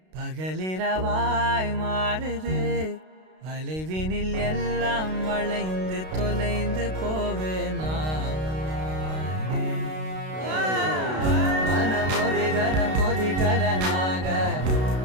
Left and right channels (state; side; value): late; left; 32 ms